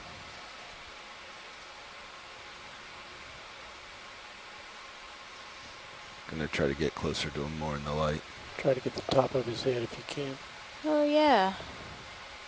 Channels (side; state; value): both; identical; correlation 1.00